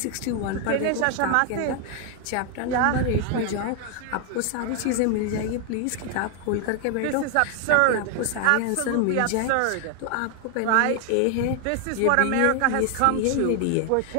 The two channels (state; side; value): different; both; correlation 0.00